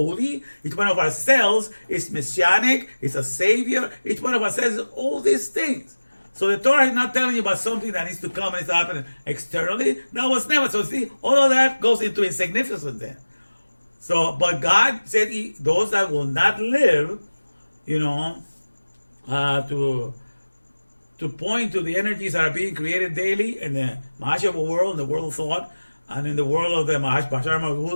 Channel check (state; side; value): inverted; both; correlation -1.00